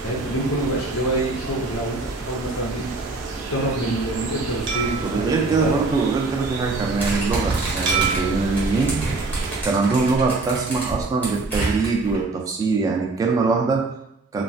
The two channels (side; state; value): left; quieter; 3.4 dB